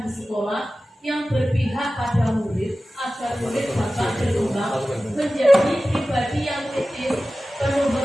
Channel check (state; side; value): normal; both; correlation 0.95